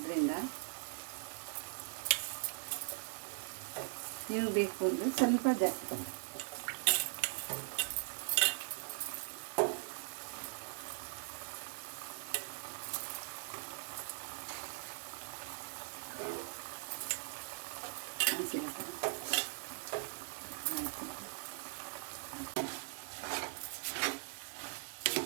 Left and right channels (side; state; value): left; silent; digital silence